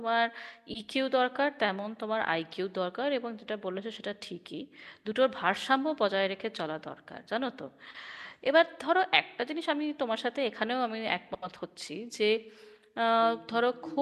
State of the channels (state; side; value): identical; both; correlation 1.00